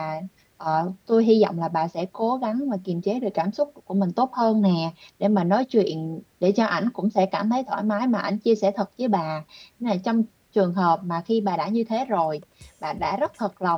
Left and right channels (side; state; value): both; identical; correlation 1.00